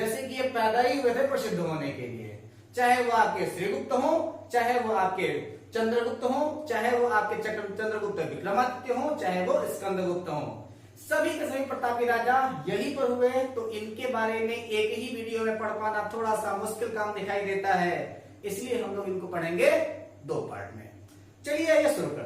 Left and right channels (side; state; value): both; identical; correlation 1.00